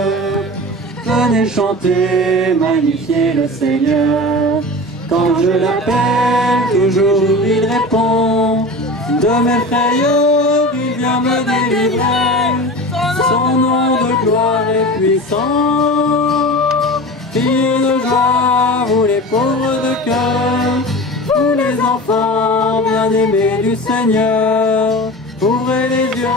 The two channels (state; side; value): normal; both; correlation 0.33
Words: Venez chanter, magnifier le Seigneur. Quand je l'appelle, toujours il répond. De mes frayeurs, il vient me délivrer. Son nom de gloire est puissant. Criez de joie, vous les pauvres de cœur, vous les enfants bien-aimés du Seigneur. Ouvrez les